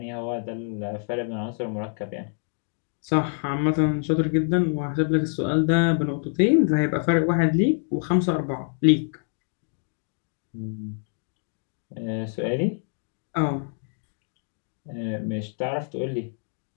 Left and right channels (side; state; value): right; silent; digital silence